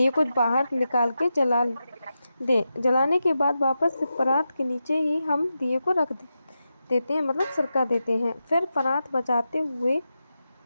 को बाहर निकाल के जला दें। जलाने के बाद वापस से परात के नीचे ही हम दिए को रख देते हैं, मतलब सरका देते हैं। फिर परात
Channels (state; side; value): inverted; both; correlation -0.90